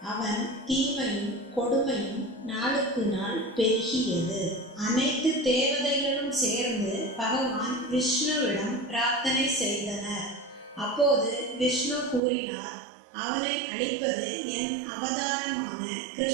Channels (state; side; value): drops out; left; at 12.2 s